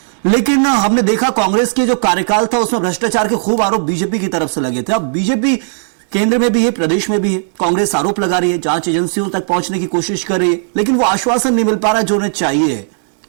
लेकिन हमने देखा कांग्रेस के जो कार्यकाल था उसमें भ्रष्टाचार के खूब आरोप बीजेपी की तरफ से लगे थे। अब बीजेपी केंद्र में भी है, प्रदेश में भी है, कांग्रेस आरोप लगा रही है, जांच एजेंसियों तक पहुंचने की कोशिश कर रही है, लेकिन वो आश्वासन नहीं मिल पा रहा जो उन्हें चाहिए।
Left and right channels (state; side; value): silent; left; digital silence